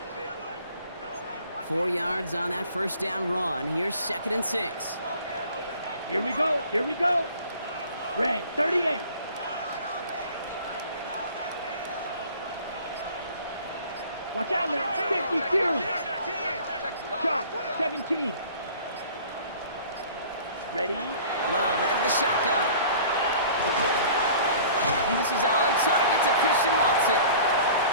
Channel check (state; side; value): inverted; both; correlation -0.48